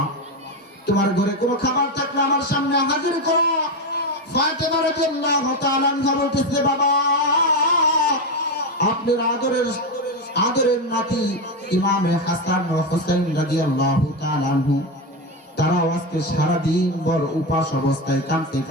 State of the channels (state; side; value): normal; both; correlation 0.13